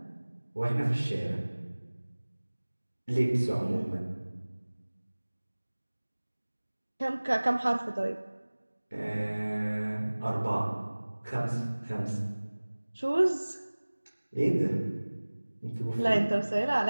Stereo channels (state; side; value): inverted; both; correlation -1.00